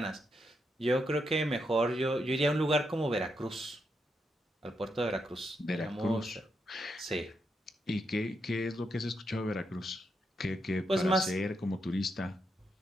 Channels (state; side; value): normal; both; correlation 0.82